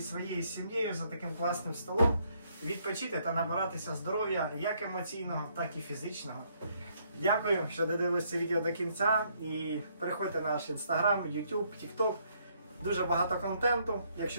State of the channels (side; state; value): both; inverted; correlation -0.70